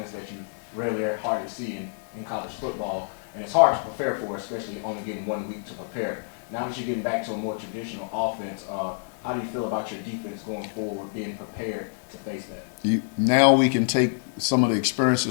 that you rarely or hardly see in college football, and it's hard to prepare for, especially only getting 1 week to prepare. Now that you're getting back to a more traditional offense, How do you feel about your defense going forward, being prepared to face that? Now we can take some of the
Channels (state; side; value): silent; right; digital silence